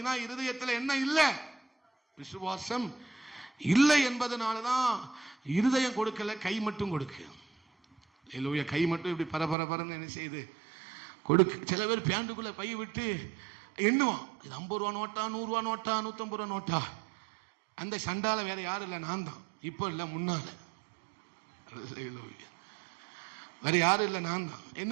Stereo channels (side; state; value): left; drops out; at 9.6 s